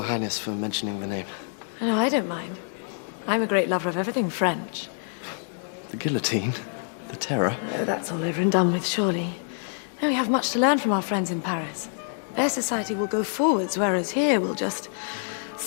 Highness, for mentioning the name. No, I don't mind. I'm a great lover of everything French. The guillotine, the terror. Oh, that's all over and done with, surely. No, we have much to learn from our friends in Paris. Their society will go forwards, whereas here we'll just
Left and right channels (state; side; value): silent; right; digital silence